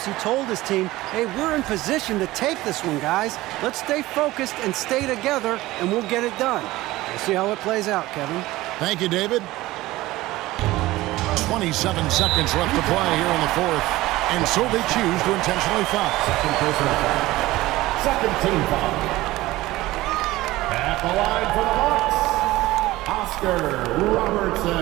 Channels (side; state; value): left; quieter; 17.9 dB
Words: he told his team, hey, we're in position to take this one, guys. Let's stay focused and stay together, and we'll get it done. We'll see how it plays out, Kevin. Thank you, David. 27 seconds left to play here in the fourth. And so they choose to intentionally foul. Second team foul. At the line for the Bucks, Oscar